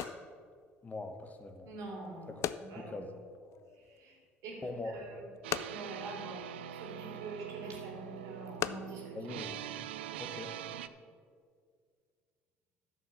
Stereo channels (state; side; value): normal; both; correlation 0.32